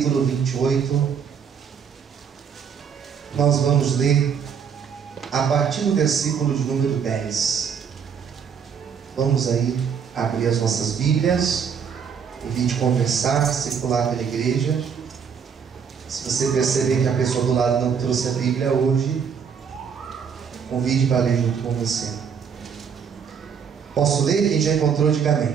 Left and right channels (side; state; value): left; quieter; 7.0 dB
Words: 28. Nós vamos ler a partir do versículo de número 10. Vamos aí abrir as nossas Bíblias, em vez de conversar, circular pela igreja. Se você perceber que a pessoa do lado não trouxe a Bíblia hoje, convide para ler junto com você. Posso ler? Quem já encontrou, diga